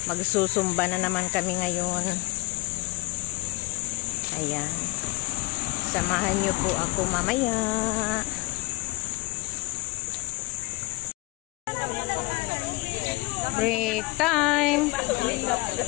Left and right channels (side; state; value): right; quieter; 23.3 dB